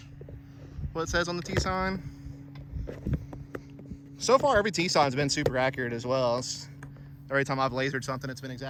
what it says on the tee sign. So far, every tee sign's been super accurate as well. Every time I've lasered something, it's been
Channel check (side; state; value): both; identical; correlation 1.00